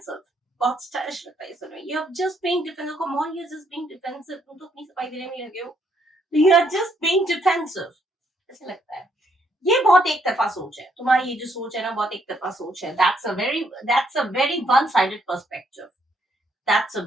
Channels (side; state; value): both; normal; correlation 0.72